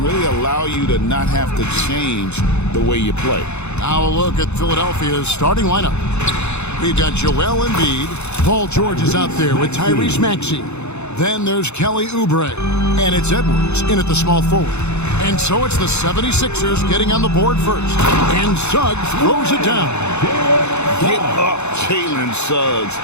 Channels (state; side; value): late; right; 0.81 ms